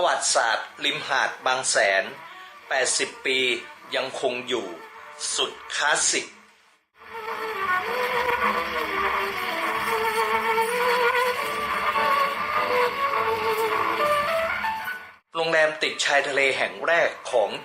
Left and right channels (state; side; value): identical; both; correlation 1.00